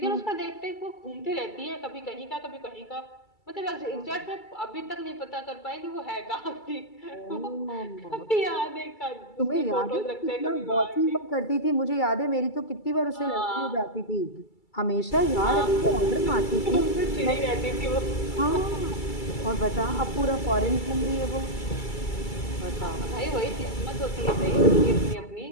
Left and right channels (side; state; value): right; late; 2.3 ms